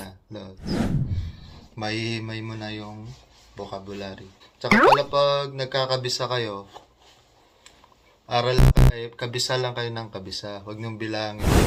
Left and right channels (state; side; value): identical; both; correlation 1.00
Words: Lodge. Mahihimay mo na yung vocabulary. Tsaka pala pag nagkakabisa kayo, kabisa lang kayo ng kabisa. Huwag niyong bilangin,